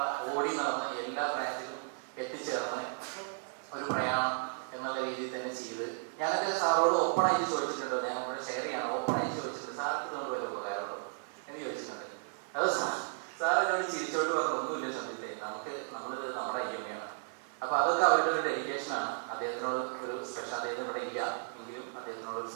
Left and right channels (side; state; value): left; silent; 55 dB below the other